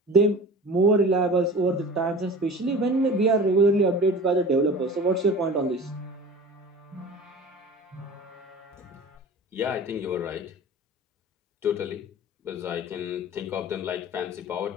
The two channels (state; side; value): normal; both; correlation 0.38